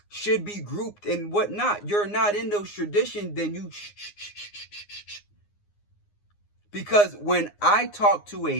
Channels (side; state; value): right; late; 9.7 ms